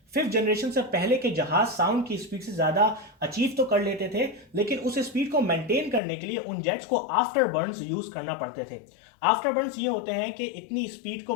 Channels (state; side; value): drops out; right; at 6.0 s